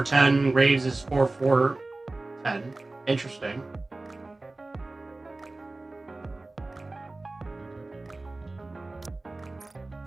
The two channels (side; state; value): left; quieter; 3.1 dB